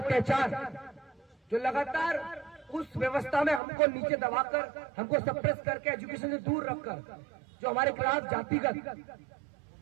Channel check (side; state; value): left; drops out; at 3.6 s